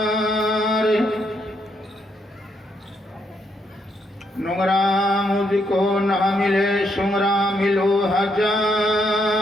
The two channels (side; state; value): both; normal; correlation 0.76